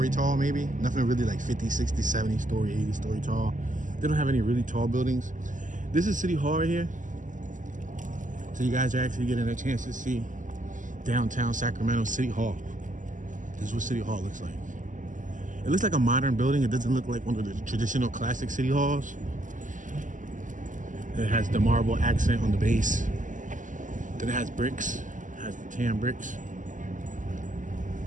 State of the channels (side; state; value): left; late; 0.37 ms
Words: tall maybe. Nothing really like 50, 60, 70-story, 80-story tall. They don't have any really tall buildings. This is City Hall right here. So you guys are actually getting a chance to see downtown Sacramento City Hall. This is what City Hall looks like. It looks like a modern building. It doesn't look like one of the traditional classic city halls. It has the marble accent on the base. Then it has bricks. It has the tan bricks.